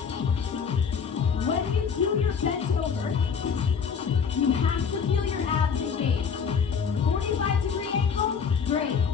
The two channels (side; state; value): right; quieter; 6.4 dB